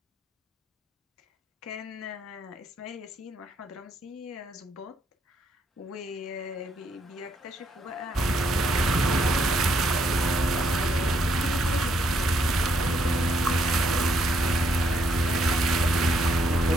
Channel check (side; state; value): both; normal; correlation 0.73